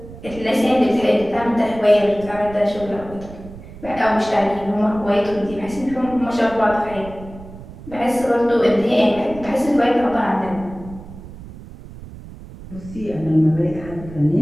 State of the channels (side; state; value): right; noise; rumble, 16 dB below the sound